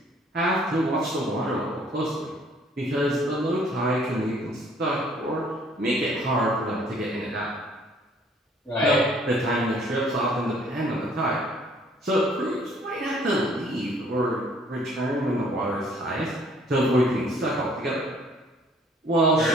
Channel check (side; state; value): both; normal; correlation 0.59